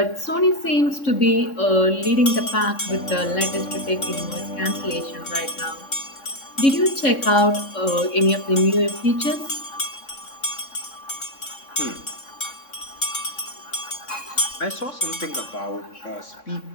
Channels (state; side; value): late; right; 3.6 ms